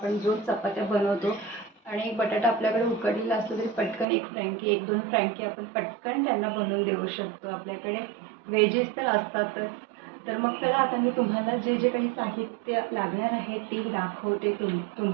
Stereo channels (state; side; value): drops out; left; at 4.0 s